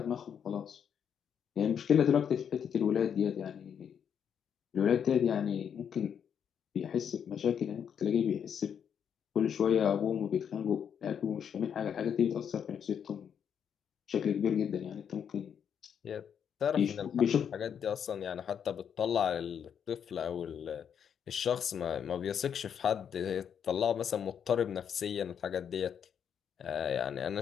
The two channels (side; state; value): right; quieter; 8.0 dB